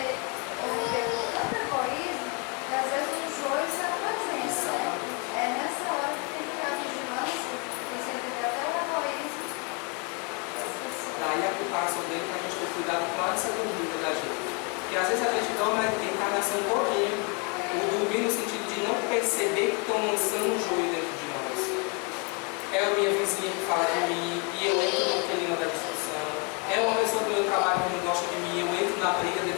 conviver com tanto egoísmo, que às vezes o joio se apresenta, né? É nessa hora que tem que ter a vigilância, que você entender até o egoísmo das pessoas. Daí a preparação dele para a gente ter cuidado com a dúvida da gente. E às vezes a gente toma a encarnação todinha, o dormir no sentido de não perceber que estão lançando um joio dentro de nós. É a minha vizinha que fala de mim e eu entro no clima da discussão. É uma pessoa do meu trabalho que não gosta de mim, eu entro na briga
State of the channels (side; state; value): right; quieter; 33.8 dB